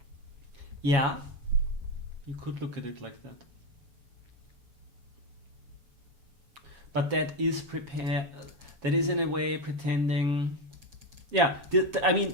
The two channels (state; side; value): late; left; 7.1 ms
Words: Yeah, you could look at it like that. But that is that is in a way pretending. Yeah, I